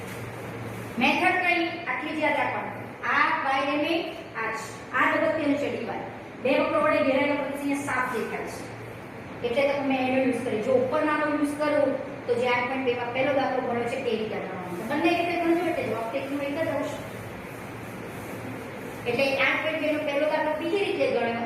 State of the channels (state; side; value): identical; both; correlation 1.00